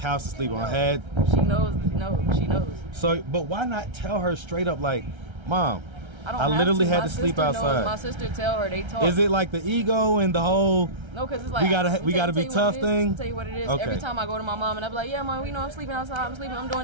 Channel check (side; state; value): left; late; 1.3 ms